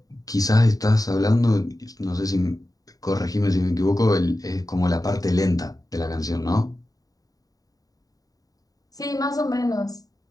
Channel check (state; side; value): late; right; 0.18 ms